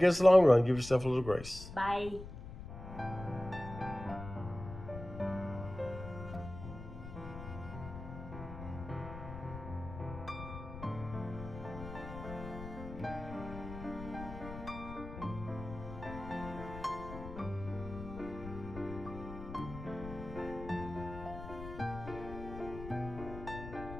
it's the long run. Give yourself a little grace. Bye.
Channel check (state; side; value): noise; left; rumble, 10 dB below the sound